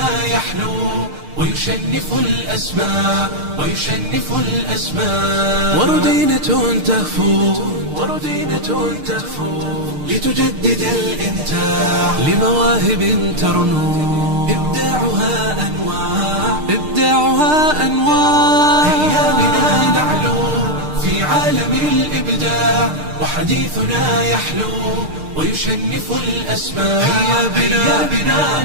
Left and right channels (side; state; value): left; late; 6.6 ms